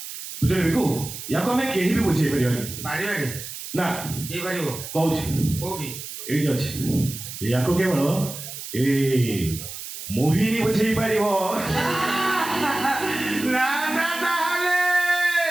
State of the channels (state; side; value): noise; right; hiss, 10 dB below the sound